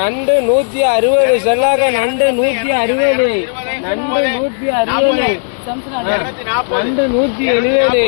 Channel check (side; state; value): right; silent; digital silence